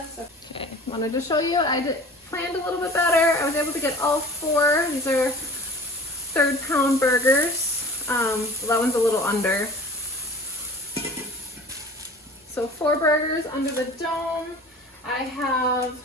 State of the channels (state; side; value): normal; both; correlation 0.43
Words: Okay, wanted to show you, planned a little bit better. I was able to get all 4. These are 3rd pound burgers. So that one's a little under. So 4 burgers under the dome. I have